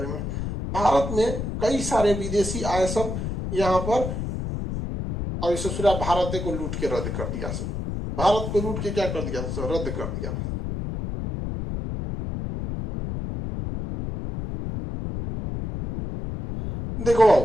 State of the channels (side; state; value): left; noise; rumble, 4 dB below the sound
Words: में। भारत में कई सारे विदेशी आए सब यहाँ पर, और इसे पूरा भारत को लूट के रद्द कर दिया। सब भारत को लूट के क्या कर दिया? सब रद्द कर दिया।